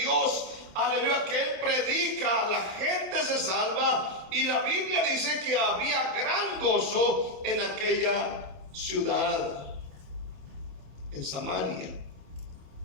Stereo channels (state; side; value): late; left; 27 ms